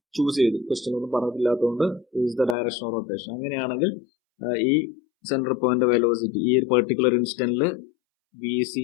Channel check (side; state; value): right; drops out; at 2.6 s